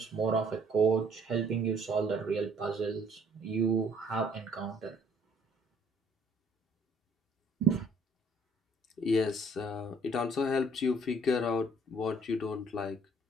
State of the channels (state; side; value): normal; both; correlation 0.60